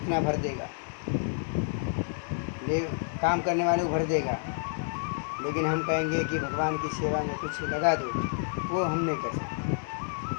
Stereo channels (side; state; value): right; silent; digital silence